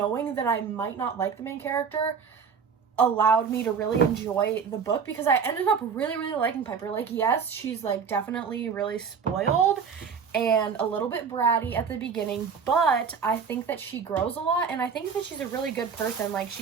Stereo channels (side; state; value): left; quieter; 6.3 dB